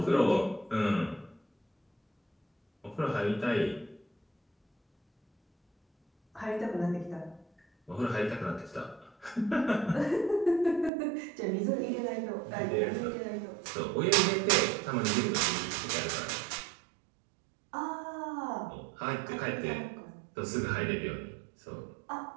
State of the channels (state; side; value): drops out; left; at 10.9 s